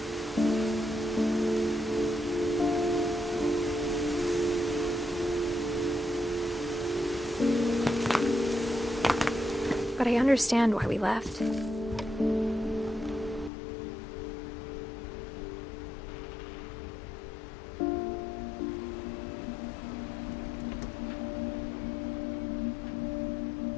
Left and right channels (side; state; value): right; drops out; at 13.5 s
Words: But I understand why we left.